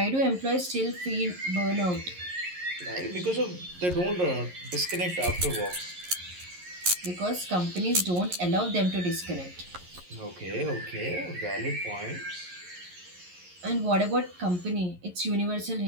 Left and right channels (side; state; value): left; late; 11 ms